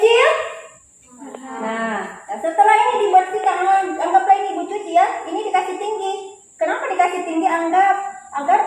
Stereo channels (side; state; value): both; identical; correlation 1.00